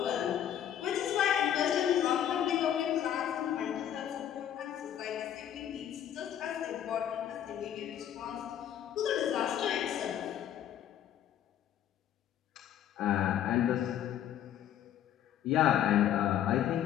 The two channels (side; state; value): right; quieter; 10.4 dB